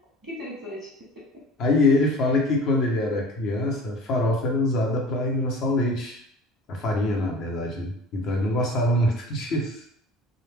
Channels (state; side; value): normal; both; correlation 0.42